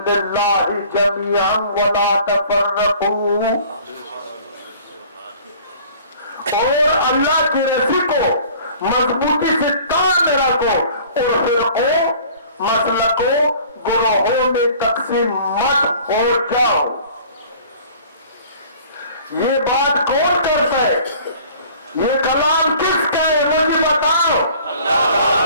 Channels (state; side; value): inverted; both; correlation -0.49